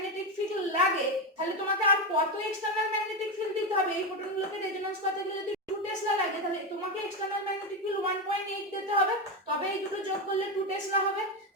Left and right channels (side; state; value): both; normal; correlation 0.12